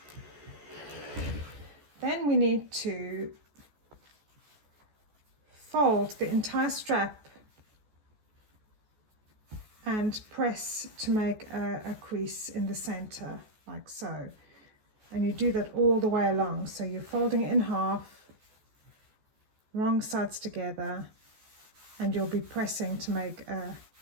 Then we need to fold the entire strap and press to make a crease in the center, like so. And you do that all the way along. So you're folding it in half, wrong sides together, and you'll be pressing to make a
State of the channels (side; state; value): left; late; 14 ms